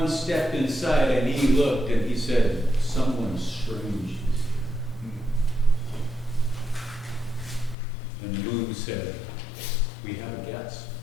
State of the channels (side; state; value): right; drops out; at 7.8 s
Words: step inside and he looked and he said, "Someone strange is here." And the moon said, "We have a guest."